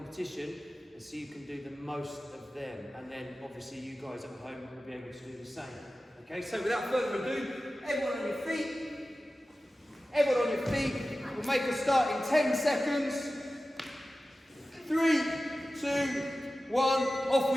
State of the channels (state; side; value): normal; both; correlation 0.95